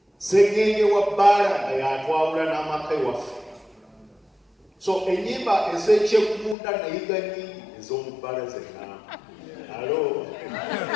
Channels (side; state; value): right; drops out; at 6.6 s